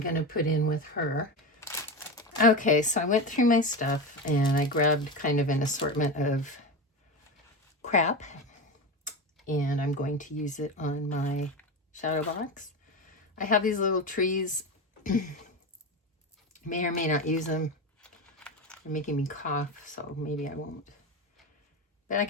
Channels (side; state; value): both; normal; correlation 0.21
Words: to put in with her. Okay, so I went through my stuff and I grabbed kind of an assortment of crap. and I'm going to use it on my shadow box. I have these little trees. May or may not use them. They're making me cough, so maybe I won't. But I